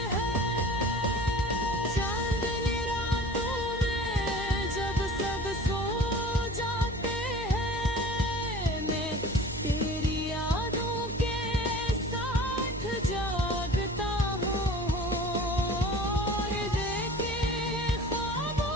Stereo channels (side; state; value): right; noise; hum, 11 dB below the sound